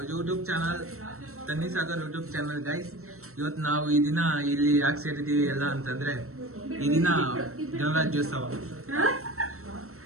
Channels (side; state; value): left; late; 0.63 ms